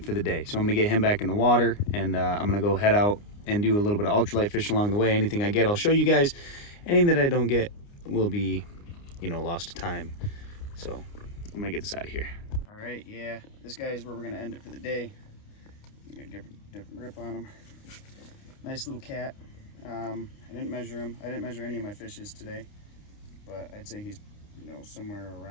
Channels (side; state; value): right; late; 29 ms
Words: for the day. So I'm gonna get him back in the water, and I'm gonna go head out and do a little bit of ultralight fishing along the way. Anything I get, I'll show you guys. Anything that I don't get will be, you know, lost to time. So I'm gonna get this out of here. All right, yeah, this guy is where we're gonna end it for the day. You got a different grip on him. Nice little cat. I didn't measure him. I didn't measure any of my fishes today, but I'd say he's, you know, somewhere